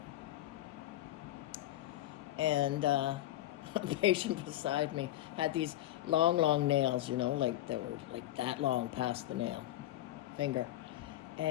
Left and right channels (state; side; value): quieter; right; 14.4 dB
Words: And a patient beside me had these long nails, like that were like that long past the nail finger.